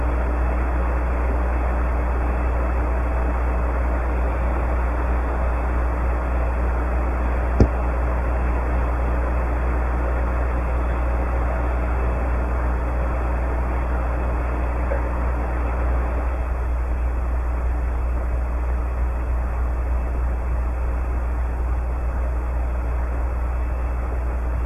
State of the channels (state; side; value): identical; both; correlation 1.00